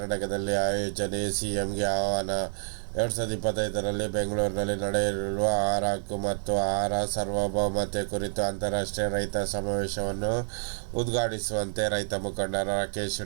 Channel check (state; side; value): silent; left; digital silence